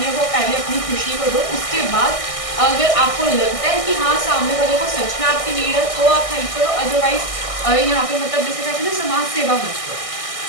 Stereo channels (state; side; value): late; right; 1.6 ms